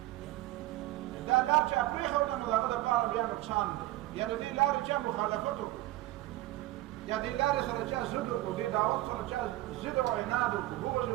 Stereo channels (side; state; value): left; quieter; 17.2 dB